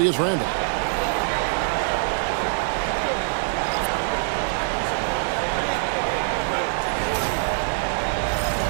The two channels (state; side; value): silent; left; digital silence